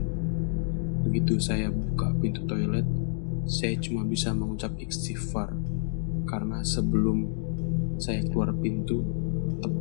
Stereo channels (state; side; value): silent; right; digital silence